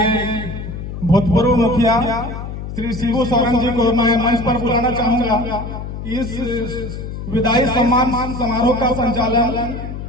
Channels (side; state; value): left; noise; hum, 8 dB below the sound